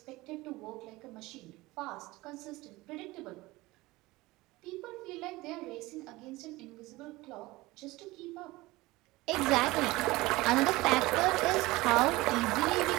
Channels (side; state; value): left; quieter; 20.3 dB